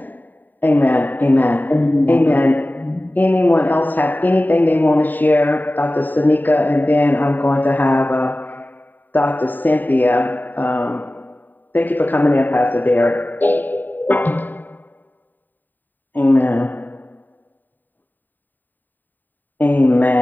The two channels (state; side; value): late; right; 0.089 ms